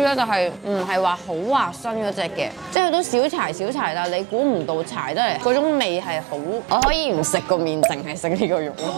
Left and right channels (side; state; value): left; drops out; at 2.8 s